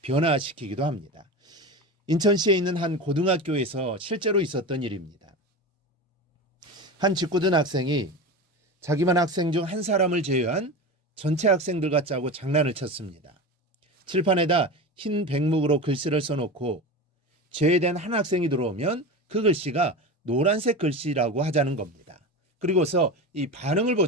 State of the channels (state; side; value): normal; both; correlation 0.26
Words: 변화시키기도 합니다. 인천시에 있는 한 고등학교에서 실제로 있었던 일입니다. 한 직구든 학생이 자기만 학생 중 한 사람을 제외한 전체 학생들과 짜고 장난을 쳤습니다. 칠판에다 흰 백목으로 글씨를 써놓고 제외된 한 학생이 들어오면 그 글씨가 노란색 글씨라고 하자는 겁니다. 그리고서 이 반응을